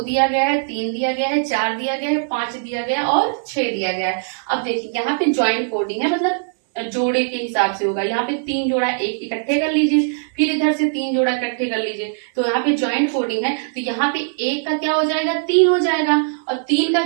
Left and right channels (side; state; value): left; silent; 66 dB below the other